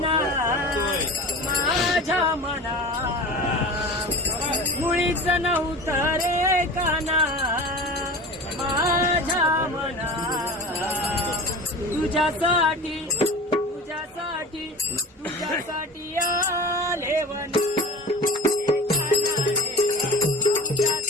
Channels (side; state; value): both; normal; correlation 0.35